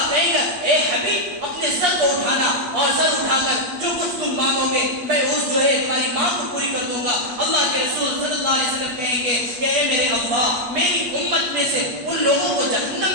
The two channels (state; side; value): late; left; 8.4 ms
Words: کہے گا اے حبیب اپنے سر کو اٹھانا، اور سر اٹھا کر جو کچھ تم مانگو گے میں اس جو ہے تمہاری مانگ کو پوری کر دوں گا۔ اللہ کے رسول صلی اللہ علیہ وسلم کہیں گے کہ اے میرے اللہ میری امت میں سے ان لوگوں کو